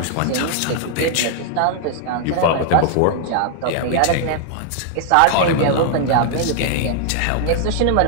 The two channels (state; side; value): different; both; correlation 0.00